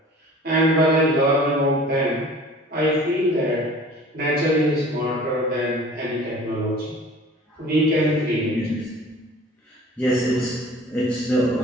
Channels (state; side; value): normal; both; correlation 0.46